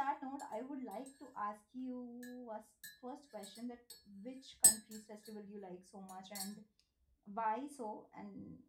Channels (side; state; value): both; identical; correlation 1.00